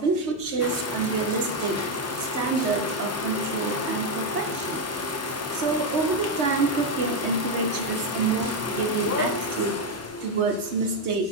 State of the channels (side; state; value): both; normal; correlation 0.04